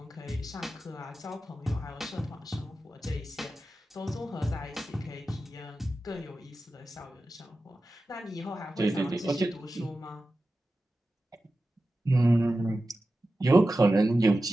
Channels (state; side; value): normal; both; correlation 0.93